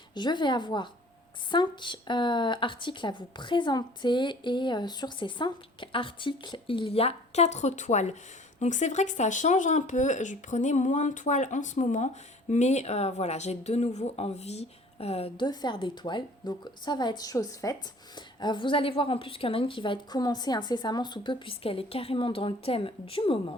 Je vais avoir 5 articles à vous présenter et sur ces 5 articles, il y a 4 toiles. Donc c'est vrai que ça change un peu, je prenais moins de toiles en ce moment, mais voilà, j'ai de nouveau envie de faire des toiles. Donc ça va être chose faite. Vous allez voir en plus qu'il y en a une qui va être commencée incessamment sous peu puisqu'elle est carrément dans le thème du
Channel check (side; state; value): both; normal; correlation 0.51